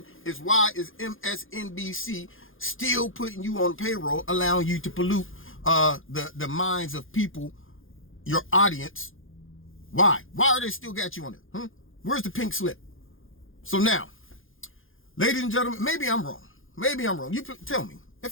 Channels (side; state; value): right; late; 0.59 ms